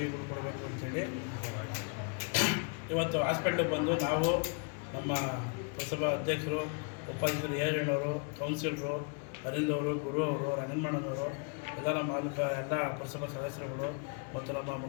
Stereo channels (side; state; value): right; quieter; 38.7 dB